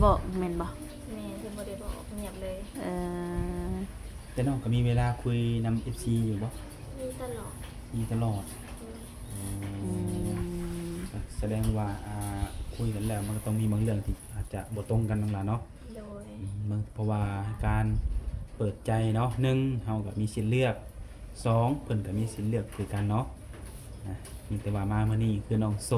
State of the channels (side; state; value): both; identical; correlation 1.00